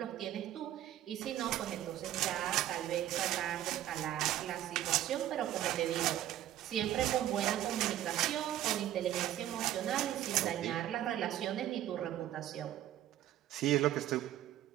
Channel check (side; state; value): left; quieter; 12.6 dB